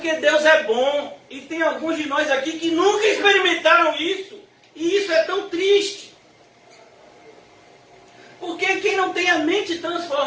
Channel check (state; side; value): identical; both; correlation 1.00